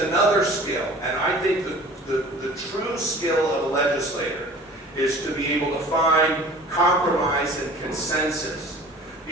skill, and I think that the true skill of a legislator is to be able to find compromise and consensus,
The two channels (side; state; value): both; normal; correlation 0.44